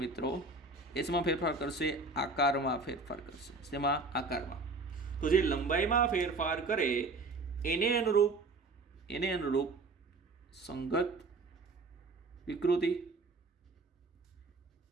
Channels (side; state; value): left; quieter; 3.5 dB